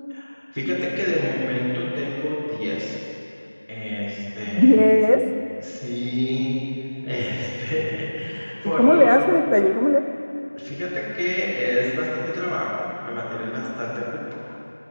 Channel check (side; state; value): both; inverted; correlation -1.00